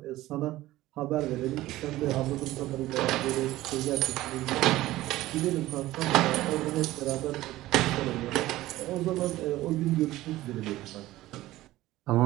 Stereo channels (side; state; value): left; quieter; 16.5 dB